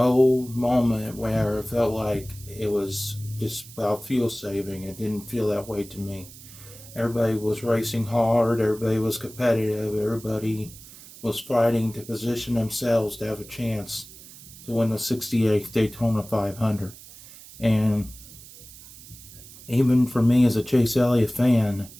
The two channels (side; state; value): right; noise; hiss, 18 dB below the sound